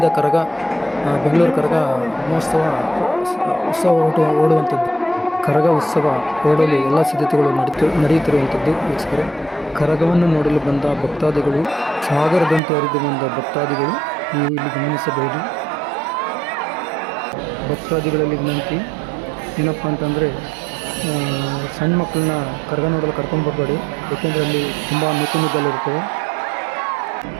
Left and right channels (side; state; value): left; drops out; at 12.6 s